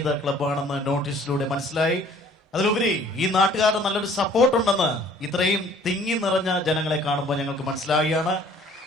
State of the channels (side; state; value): both; normal; correlation 0.55